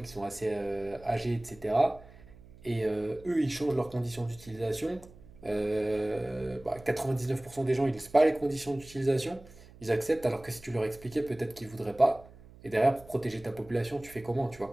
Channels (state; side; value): noise; right; hum, 22 dB below the sound